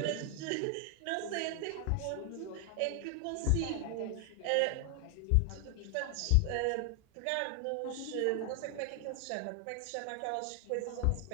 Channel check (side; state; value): both; different; correlation 0.00